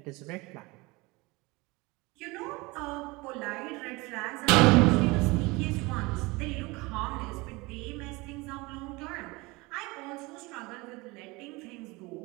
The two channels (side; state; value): left; quieter; 23.9 dB